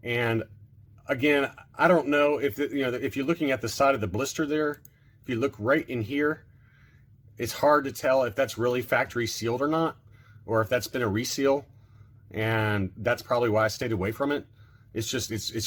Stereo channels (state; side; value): identical; both; correlation 1.00